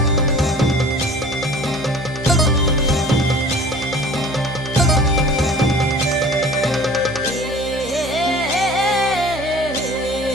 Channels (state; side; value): normal; both; correlation 0.46